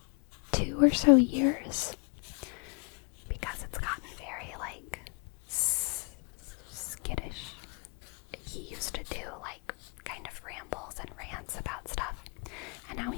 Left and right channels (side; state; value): right; quieter; 36.7 dB